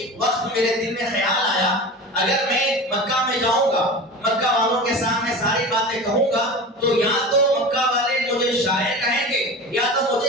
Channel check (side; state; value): both; normal; correlation 0.32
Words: وقت میرے دل میں خیال آیا اگر میں مکہ میں جاؤں گا، مکہ والوں کے سامنے ساری باتیں کہوں گا تو یا تو مکہ والے مجھے شاعر کہیں گے یا تو